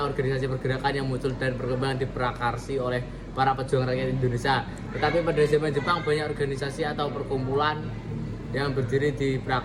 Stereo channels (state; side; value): identical; both; correlation 1.00